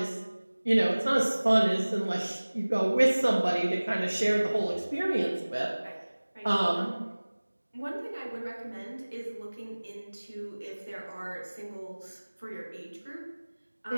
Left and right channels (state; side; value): inverted; both; correlation -1.00